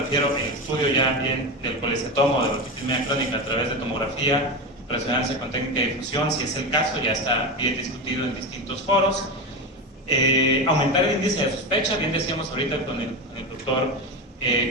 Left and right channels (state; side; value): normal; both; correlation 0.20